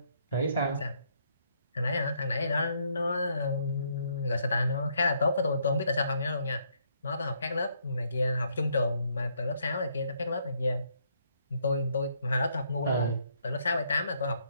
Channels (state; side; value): inverted; both; correlation -0.71